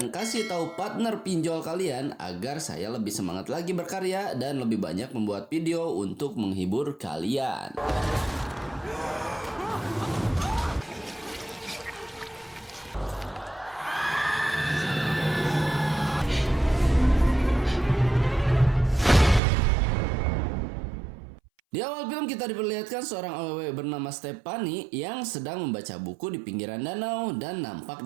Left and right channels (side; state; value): left; drops out; at 19.4 s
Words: kasih tahu partner pinjol kalian agar saya lebih semangat lagi berkarya dan lebih banyak membuat video untuk menghibur kalian. Di awal film kita diperlihatkan seorang awewe bernama Stephanie yang sedang membaca buku di pinggiran danau dan